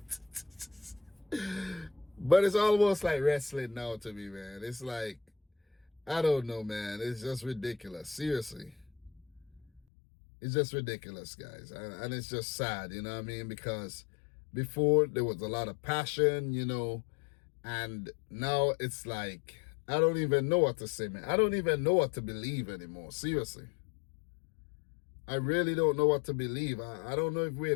But it's almost like wrestling now to me, man. It's like, I don't know, man. It's just ridiculous. Seriously. It's just ridiculous, guys. And it's just sad, you know what I mean? Because before there was a lot of passion, and now it's like, I don't even know what to say, man. I don't even know what to believe anymore. Seriously. I really don't know what to believe. I don't know if we're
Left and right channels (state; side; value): drops out; right; at 9.8 s